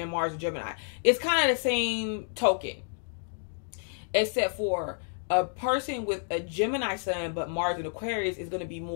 Mars and Gemini. It's kind of the same token, except for a person with a Gemini Sun but Mars and Aquarius is going to be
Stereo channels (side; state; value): right; silent; digital silence